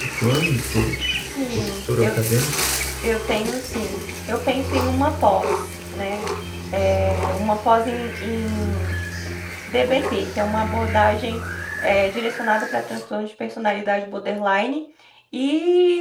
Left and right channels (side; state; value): both; identical; correlation 1.00